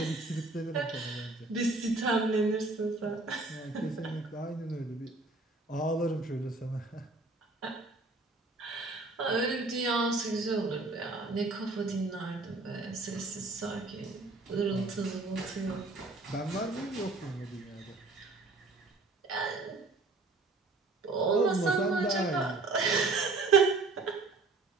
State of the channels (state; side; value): quieter; left; 3.4 dB